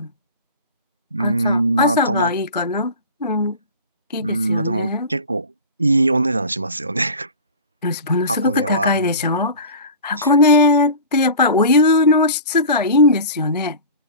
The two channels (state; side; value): inverted; both; correlation -0.35